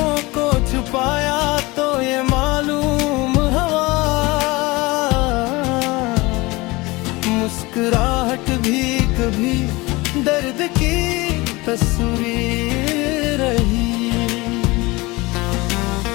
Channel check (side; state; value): right; quieter; 22.8 dB